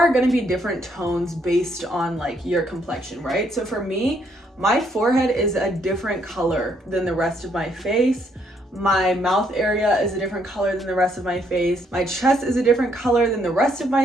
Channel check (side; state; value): both; normal; correlation 0.71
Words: going to be different tones based on like your complexion, right? So for me, my forehead is a different color than the rest of my face. My mouth area is a different color than the rest of my face. My chest is a different color than the rest of